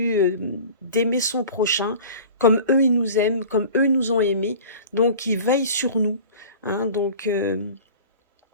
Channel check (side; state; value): both; inverted; correlation -0.41